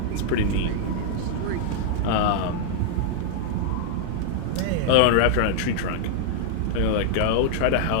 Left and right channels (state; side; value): different; both; correlation -0.01